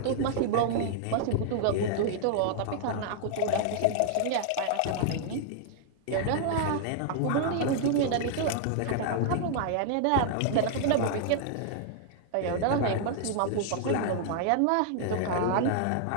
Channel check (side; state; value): both; different; correlation -0.01